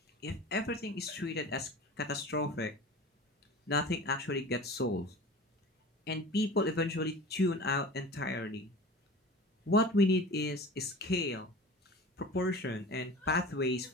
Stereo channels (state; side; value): normal; both; correlation 0.37